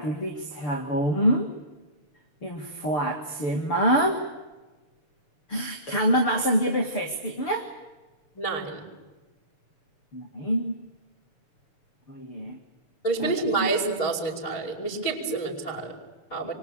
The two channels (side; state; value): right; late; 6.9 ms